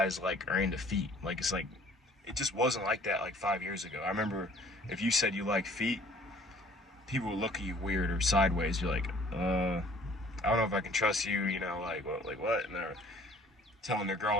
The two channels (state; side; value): normal; both; correlation 0.54